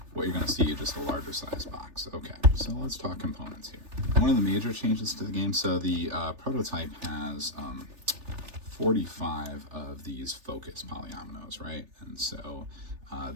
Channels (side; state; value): left; late; 3.4 ms